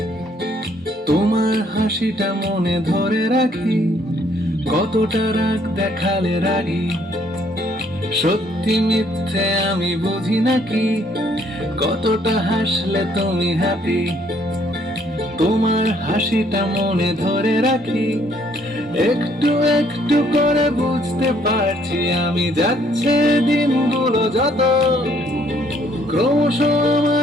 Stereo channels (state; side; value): normal; both; correlation 0.65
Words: তোমার হাসিটা মনে ধরে রাখি। কতটা রাগ দেখালে রাগি, সত্যি মিথ্যে আমি বুঝি নাকি? কতটা হাসলে তুমি হ্যাপি, তোমার হাসিটা মনে ধরে রাখি। একটু একটু করে বুঝতে পারছি আমি, যাচ্ছে দিনগুলো যত, ক্রমশ